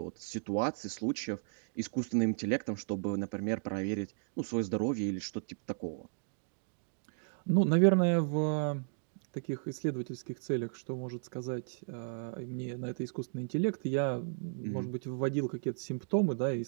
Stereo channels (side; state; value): left; silent; digital silence